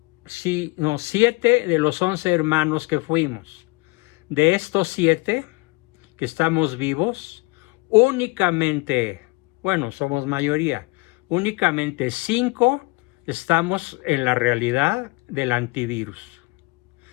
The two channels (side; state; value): right; quieter; 25.5 dB